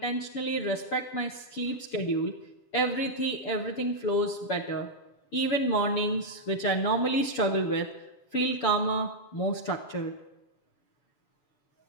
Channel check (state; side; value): late; right; 7.0 ms